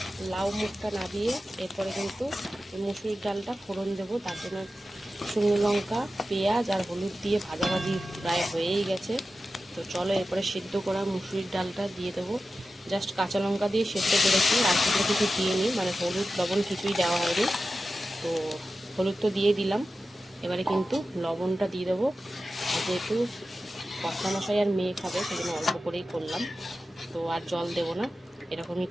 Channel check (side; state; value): both; normal; correlation 0.93